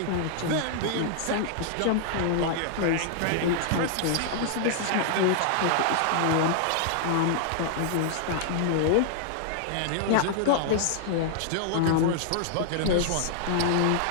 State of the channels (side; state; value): both; different; correlation -0.01